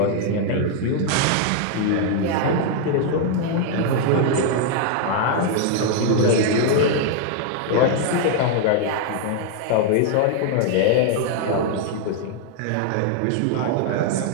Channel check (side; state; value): both; different; correlation 0.00